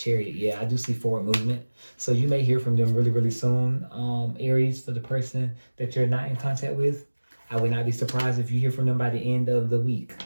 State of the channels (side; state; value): both; inverted; correlation -1.00